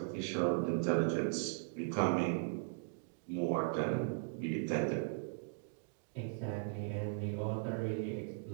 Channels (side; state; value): left; silent; digital silence